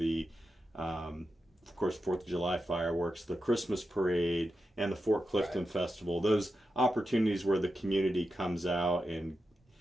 of course, 4th of July fireworks, the Christmas parade, and the Fort Clifton Festival. Those opportunities where the community comes out and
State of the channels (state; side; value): normal; both; correlation 0.89